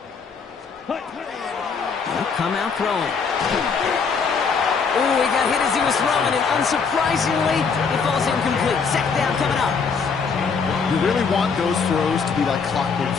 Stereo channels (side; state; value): right; quieter; 5.5 dB